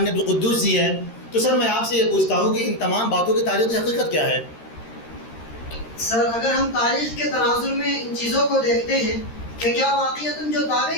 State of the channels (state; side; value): late; right; 13 ms